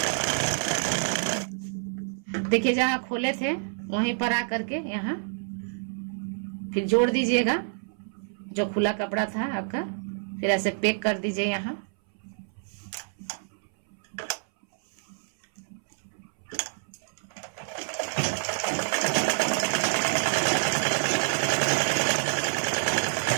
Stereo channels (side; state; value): left; silent; 60 dB below the other